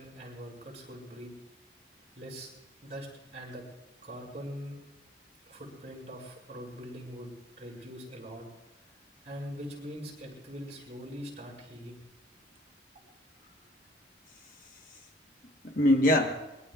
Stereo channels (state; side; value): normal; both; correlation 0.56